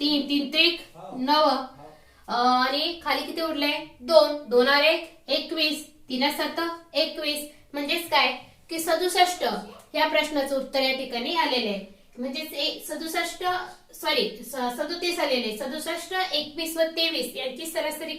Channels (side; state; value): both; identical; correlation 1.00